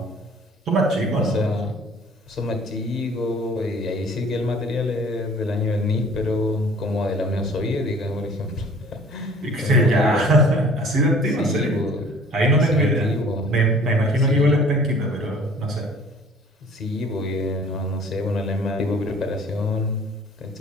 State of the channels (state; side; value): normal; both; correlation 0.51